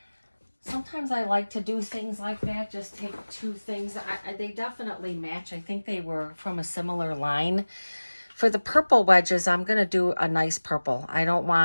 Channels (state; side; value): inverted; both; correlation -1.00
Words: sometimes I like to do things like that, just take 2 things. They definitely match. I think they were from a similar line. For the purple wedges, I'm going to do a nice purple. I don't